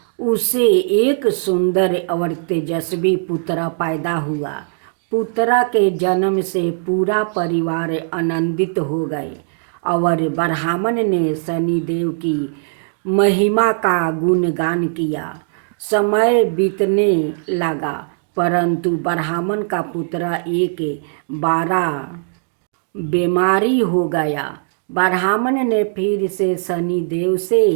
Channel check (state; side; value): silent; left; digital silence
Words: उसे एक सुंदर और तेजस्वी पुत्र पैदा हुआ। पुत्र के जन्म से पूरा परिवार आनंदित हो गए और ब्राह्मण ने शनिदेव की महिमा का गुणगान किया। समय बीतने लगा, परंतु ब्राह्मण का पुत्र एक बार बीमारी हो गया। ब्राह्मण ने फिर से शनिदेव